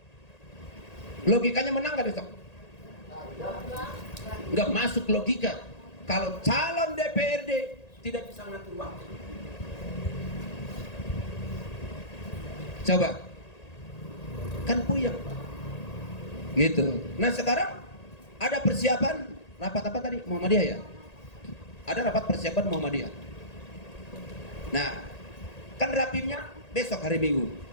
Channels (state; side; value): late; right; 1.8 ms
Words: Logikanya menang nggak besok? Nggak masuk logika. Kalau calon DPRD tidak bisa ngatur waktu. Coba, kan puyeng Pak. Gitu. Nah sekarang ada persiapan rapat apa tadi? Muhammadiyah ya? Ada rapat persiapan Muhammadiyah. Nah, kan rapimnya besok hari Minggu.